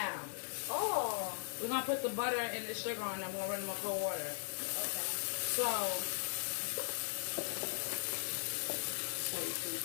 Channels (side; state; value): right; silent; digital silence